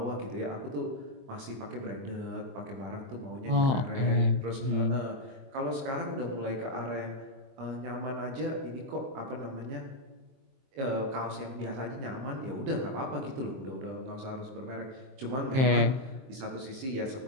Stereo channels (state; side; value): late; left; 23 ms